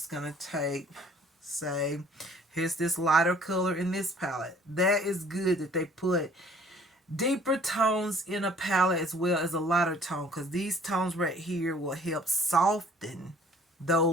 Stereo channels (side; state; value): both; normal; correlation 0.55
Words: going to take, say, here's this lighter color in this palette. That is good that they put deeper tones in a palette as well as a lighter tone, because these tones right here will help soften